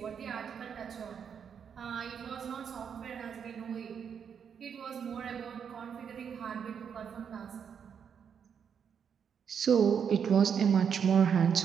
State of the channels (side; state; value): left; quieter; 7.4 dB